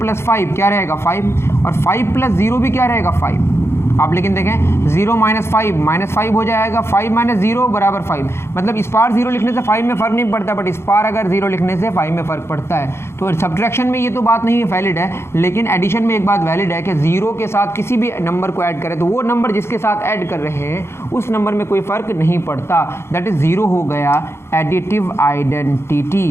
5 क्या रहेगा? 5, और 5 + 0 भी क्या रहेगा? 5। आप लेकिन देखें 0 - 5 -5 हो जाएगा, 5 - 0 = 5। मतलब इस पार 0 लिखने से 5 में फ़र्क नहीं पड़ता, बट इस पार अगर 0 लिखने से 5 में फ़र्क पड़ता है। तो सब्ट्रैक्शन में ये तो बात नहीं वैलिड है, लेकिन एडिशन में एक बात वैलिड है कि 0 के साथ किसी भी नंबर को ऐड करें तो वो नंबर जिसके साथ ऐड कर रहे हैं उस नंबर में कोई फ़र्क नहीं पड़ता। दैट इज़ 0 हो गया additive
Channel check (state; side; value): late; right; 0.12 ms